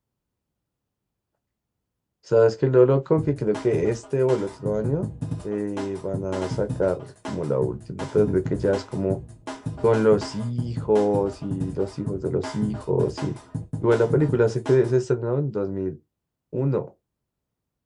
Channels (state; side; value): identical; both; correlation 1.00